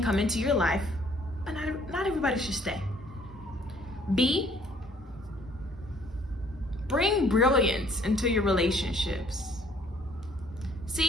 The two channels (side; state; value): both; normal; correlation 0.60